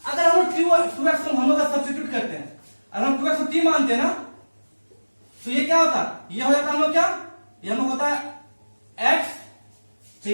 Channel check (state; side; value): inverted; both; correlation -1.00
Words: अगर हम लोग 2x को हम लोग का सब्स्टिट्यूट करते हैं, अगर हम 2x को t मानते हैं ना, तो ये क्या होता? ये हो जाता हम लोग क्या? ये हम लोग होता है x,